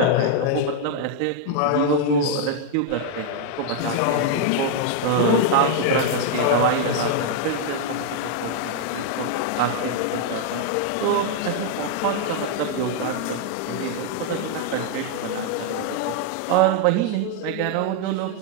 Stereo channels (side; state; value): both; different; correlation 0.00